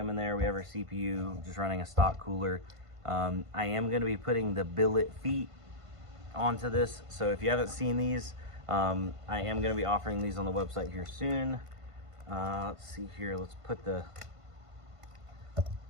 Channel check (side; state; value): left; late; 1.5 ms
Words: in there, we have our CPU, just running a stock cooler. I am going to be putting the billet feet onto this, so if you haven't seen these, I am going to be offering these on the website here soon. Let's see here, let's put the